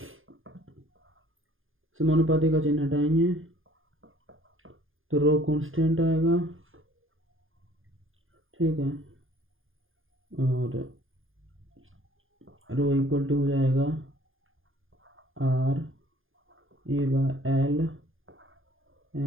समानुपाती का चिन्ह हटाएंगे तो रो कांस्टेंट आएगा। ठीक है, और रो इक्वल टू हो जाएगा R A/L।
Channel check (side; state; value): left; late; 0.59 ms